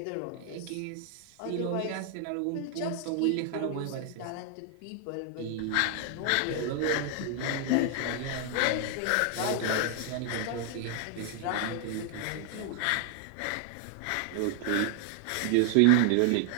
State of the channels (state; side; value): different; both; correlation 0.00